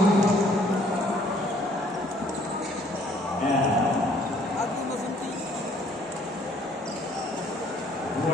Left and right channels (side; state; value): both; normal; correlation 0.61